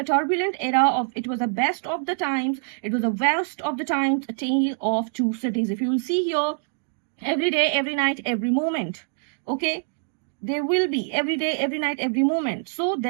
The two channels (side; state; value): left; silent; digital silence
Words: turbulent era of it was the best of the times, it was the worst of the times, a tale of two cities. If you will see here, every day, every night, every moment. Okay, there will be every day, every night, every moment. So